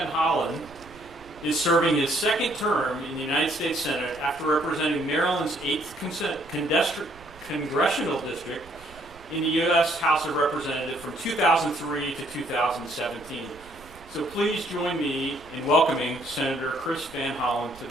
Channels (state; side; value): noise; right; rumble, 22 dB below the sound